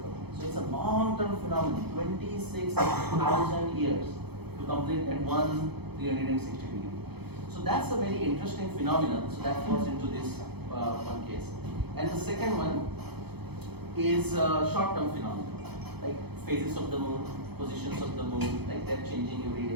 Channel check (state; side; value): late; left; 0.97 ms